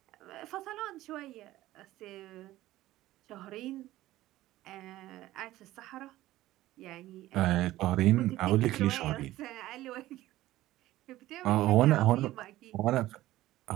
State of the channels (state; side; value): quieter; left; 15.8 dB